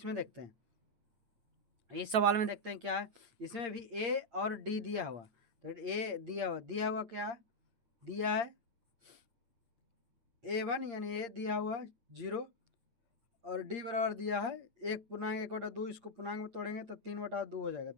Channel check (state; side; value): late; left; 9.0 ms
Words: देखते हैं, इस सवाल में देखते हैं क्या है। इसमें भी ए और डी दिया हुआ, तो ए दिया हुआ क्या है, दिया है A1 यानी ए दिया हुआ 0, और डी बराबर दिया है 1/1/2, इसको पूर्णांक में तोड़ेंगे तो 3/2 हो जाएगा,